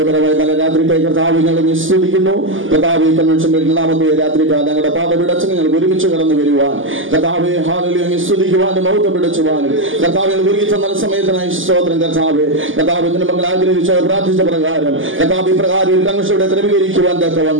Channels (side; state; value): left; late; 0.58 ms